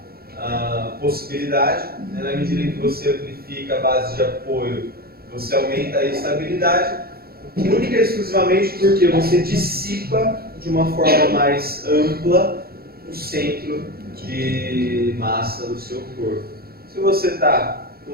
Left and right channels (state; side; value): late; left; 0.44 ms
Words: possibilidade, né? Na medida que você amplifica a base de apoio, você aumenta a estabilidade, única e exclusivamente porque você dissipa de uma forma mais ampla o centro de massa do seu corpo. Se você está com